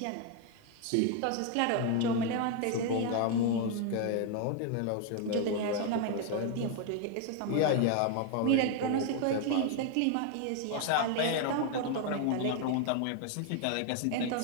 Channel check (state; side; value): different; both; correlation 0.01